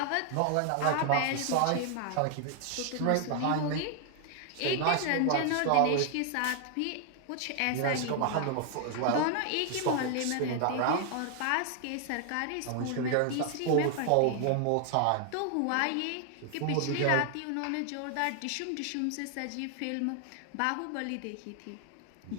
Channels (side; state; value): both; different; correlation 0.00